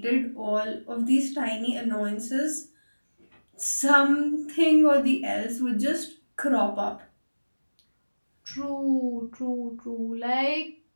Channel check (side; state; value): both; inverted; correlation -1.00